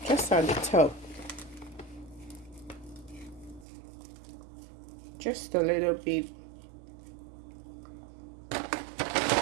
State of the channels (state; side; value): drops out; left; at 3.7 s